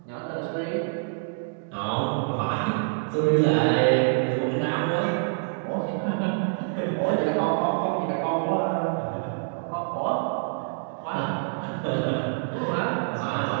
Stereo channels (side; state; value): left; silent; digital silence